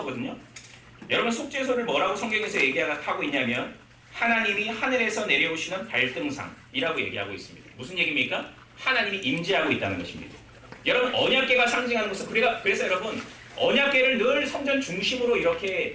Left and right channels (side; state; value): both; identical; correlation 1.00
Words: 여러분 속죄소를 뭐라고 성경에서 얘기하고 있냐면 하나님이 하늘에서 내려오시는 발등상이라고 얘기하고 있습니다. 무슨 얘기입니까? 하나님이 임재하고 있다는 것입니다. 여러분 언약궤가 상징하는 것은 그래서 여러분 언약궤를 늘 성전 중심으로